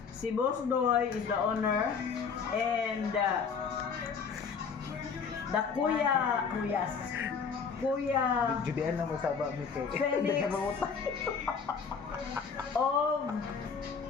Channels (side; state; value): right; quieter; 5.9 dB